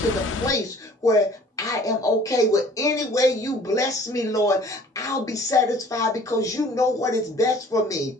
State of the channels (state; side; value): normal; both; correlation 0.52